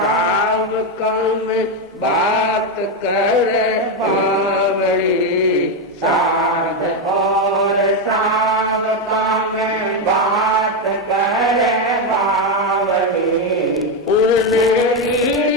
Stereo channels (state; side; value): normal; both; correlation 0.07